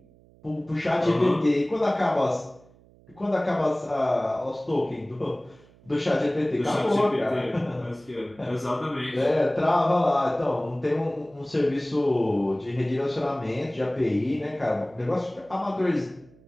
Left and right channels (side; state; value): right; noise; hum, 27 dB below the sound